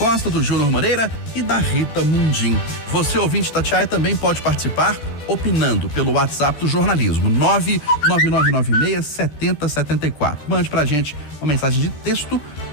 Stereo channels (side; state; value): right; late; 14 ms